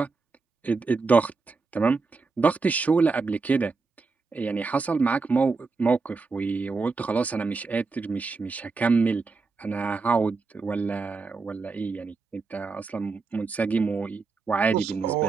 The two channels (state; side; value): quieter; left; 4.3 dB